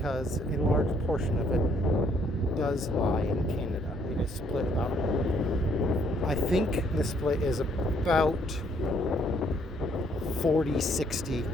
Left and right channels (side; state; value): both; normal; correlation 0.67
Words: a large portion of it does lie in Canada. It is split about, I think the split is about 40-60